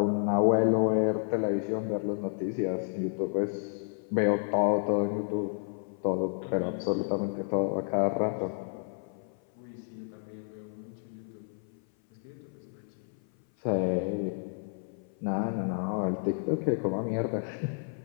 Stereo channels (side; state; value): right; silent; 55 dB below the other